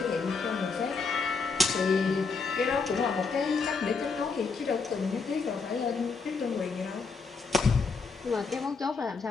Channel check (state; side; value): quieter; right; 4.7 dB